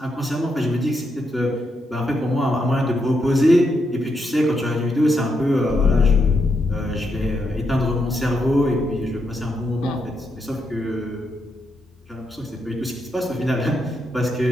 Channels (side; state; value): both; normal; correlation 0.81